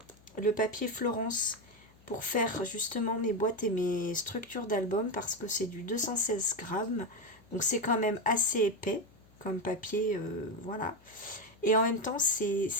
le papier Florence pour faire justement mes boîtes et mes structures d'albums parce que c'est du 216 grammes. Donc c'est quand même assez épais comme papier, voilà. Et en même temps,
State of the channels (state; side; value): noise; left; hum, 28 dB below the sound